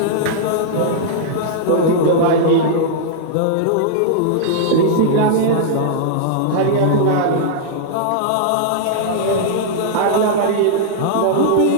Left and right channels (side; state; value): both; different; correlation -0.02